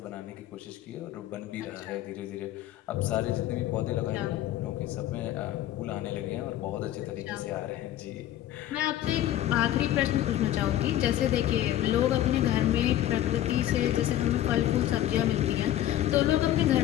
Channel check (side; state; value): right; quieter; 13.0 dB